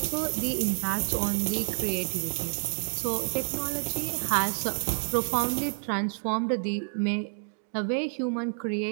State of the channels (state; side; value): silent; left; 59 dB below the other